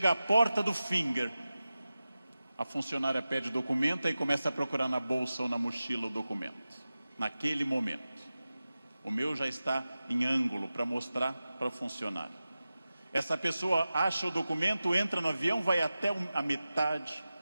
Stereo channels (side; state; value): both; inverted; correlation -0.95